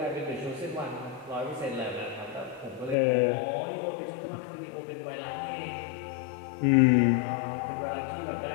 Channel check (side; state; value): right; drops out; at 3.0 s